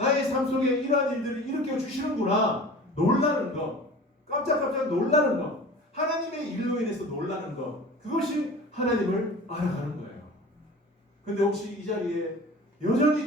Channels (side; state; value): both; normal; correlation 0.39